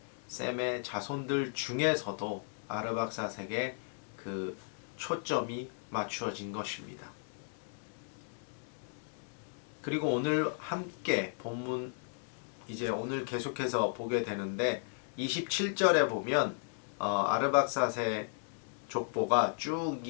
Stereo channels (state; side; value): silent; right; digital silence